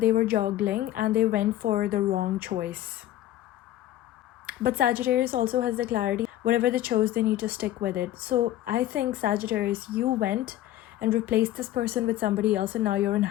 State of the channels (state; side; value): quieter; right; 13.7 dB